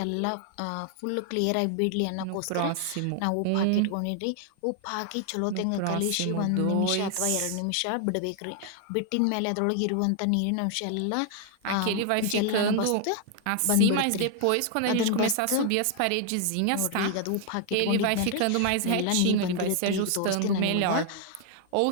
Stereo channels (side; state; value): both; different; correlation 0.00